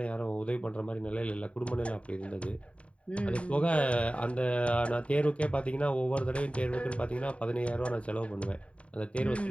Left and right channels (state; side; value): late; right; 0.063 ms